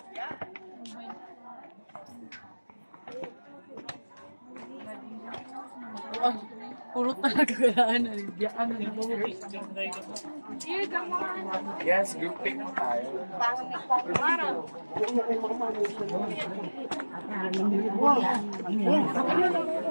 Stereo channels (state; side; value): inverted; both; correlation -1.00